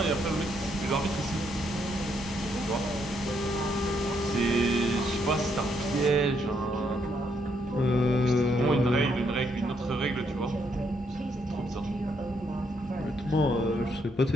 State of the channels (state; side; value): normal; both; correlation 0.75